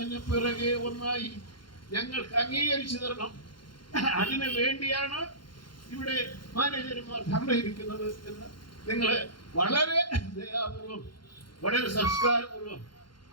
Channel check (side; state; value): right; late; 0.72 ms